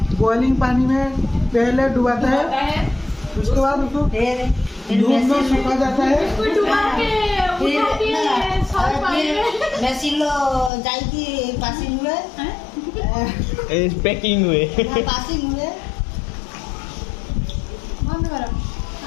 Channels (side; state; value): right; drops out; at 10.7 s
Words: बॉइलिंग पानी में पहले डुबाता है, उसके बाद उसको धूप में सुखा जाता है। ମେସିନ୍ ଯାଇକି ପାସିଂ ହୁଏ पैकिंग हुए ପାସିଂ ହୁଏ